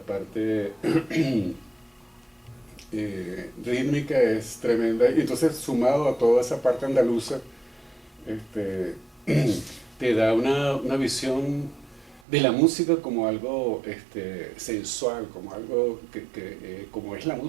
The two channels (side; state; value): left; drops out; at 12.2 s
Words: rítmica es tremenda, y entonces sumado a toda esa parte andaluza, te da una visión de la música como algo sensual, como algo como es la